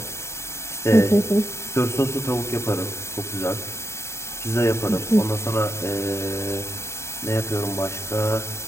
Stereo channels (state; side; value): late; right; 0.13 ms